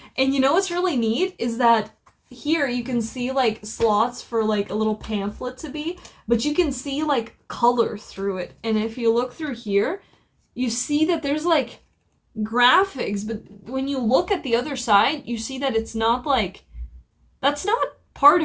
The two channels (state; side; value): identical; both; correlation 1.00